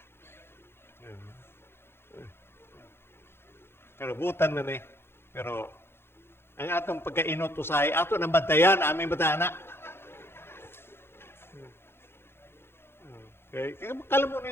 Pero butan na ni. Pero ang atong pagkainot usahay, ato nang bantayan, aming batana. Okay? Kala mo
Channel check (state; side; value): late; right; 0.11 ms